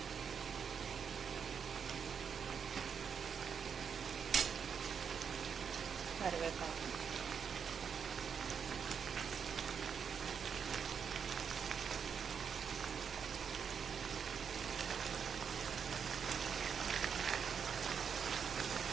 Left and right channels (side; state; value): left; quieter; 6.9 dB